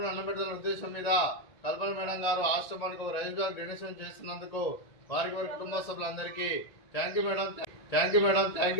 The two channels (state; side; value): late; right; 1.9 ms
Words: అన్నబెట్టాలనే ఉద్దేశం మీద కల్పన మేడం గారు ఆశ్రమానికి ఒక రైస్ బ్యాగ్ డొనేషన్ చేస్తున్నందుకు వారికి వారి కుటుంబ సభ్యులందరికీ thank you madam, thank you madam, thank